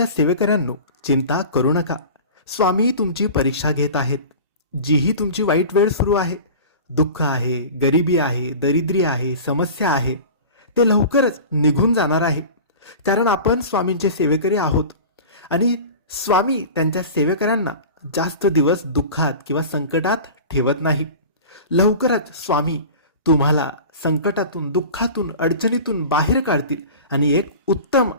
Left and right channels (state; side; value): inverted; both; correlation -0.36